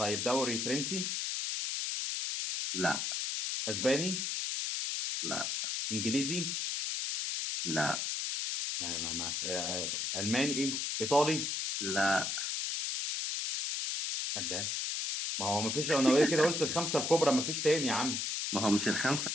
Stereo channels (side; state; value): left; noise; hiss, 1 dB below the sound